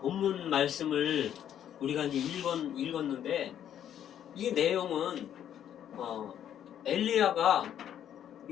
말씀을 우리가 이제 읽었는데 이 내용은 엘리야가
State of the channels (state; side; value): quieter; right; 10.1 dB